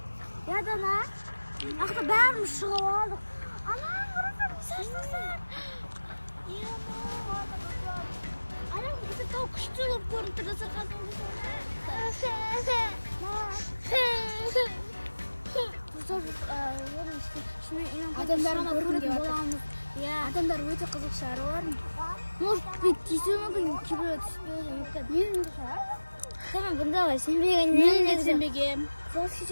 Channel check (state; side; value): inverted; both; correlation -1.00